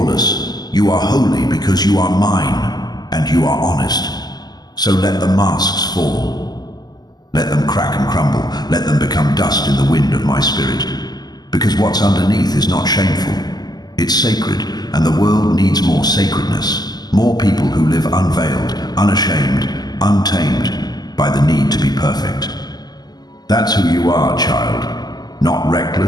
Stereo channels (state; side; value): late; right; 0.20 ms